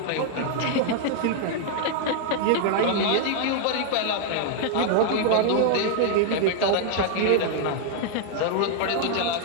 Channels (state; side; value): different; both; correlation 0.00